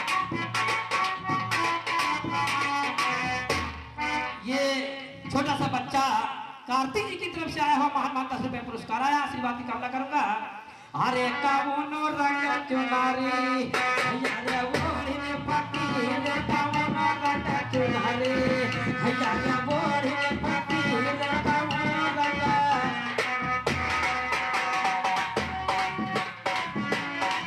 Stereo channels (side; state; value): both; identical; correlation 1.00